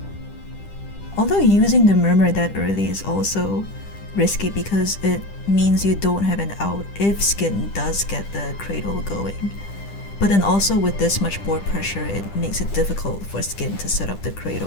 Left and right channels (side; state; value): right; late; 10 ms